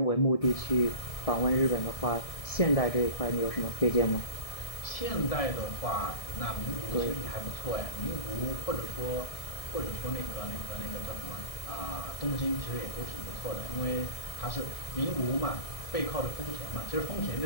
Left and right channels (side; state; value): right; late; 1.7 ms